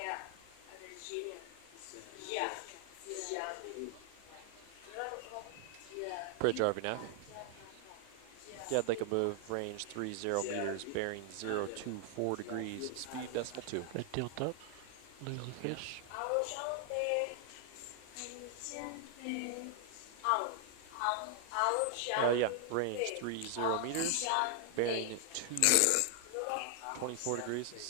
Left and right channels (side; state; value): both; different; correlation 0.00